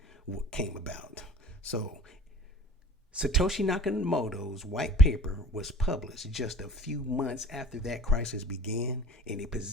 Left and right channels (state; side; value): normal; both; correlation 0.47